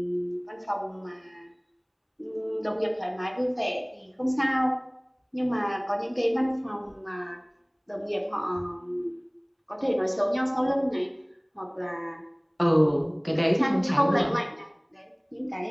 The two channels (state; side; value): identical; both; correlation 1.00